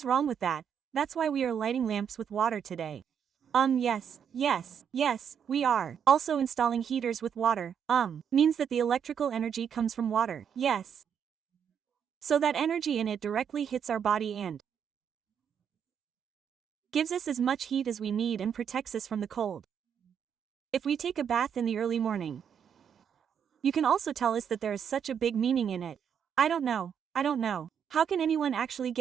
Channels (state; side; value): quieter; left; 7.9 dB